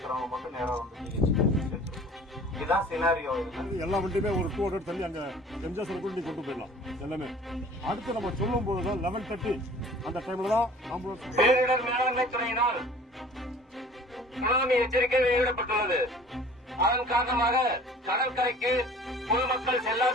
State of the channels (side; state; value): both; normal; correlation 0.48